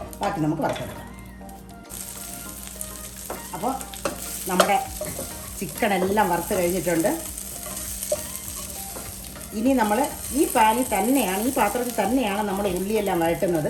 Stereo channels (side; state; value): both; identical; correlation 1.00